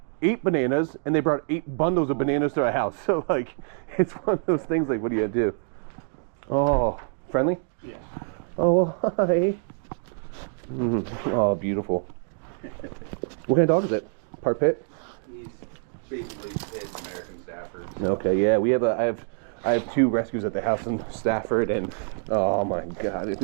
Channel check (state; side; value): silent; left; 57 dB below the other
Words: 8 bananas, and they brought 8 bundles of bananas to our house. So like, it's one of those things. Like, what do you do? Oh, friendly? Yeah. Oh, hi. Oh, beautiful. What kind of dog is it? Part pit? He's basically his American Stafford. Okay, yeah. I have 2 rescues at the house in Stafford, and oh my God,